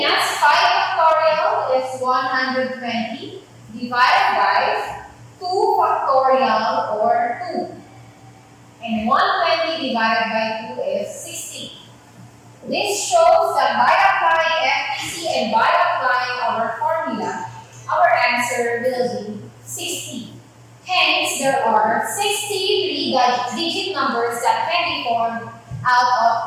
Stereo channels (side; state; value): both; identical; correlation 1.00